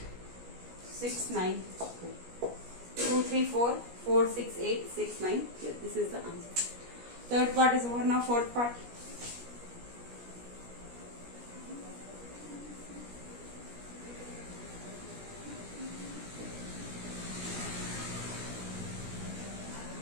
6 9 2 3 4 4 6 8 6 9. Here, this is the answer. Third part is over. Now fourth part.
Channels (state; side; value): late; left; 17 ms